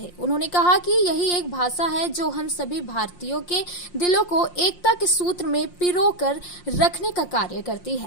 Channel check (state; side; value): late; right; 5.7 ms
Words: उन्होंने कहा कि यही एक भाषा है जो हम सभी भारतीयों के दिलों को एकता के सूत्र में पिरोकर रखने का कार्य करती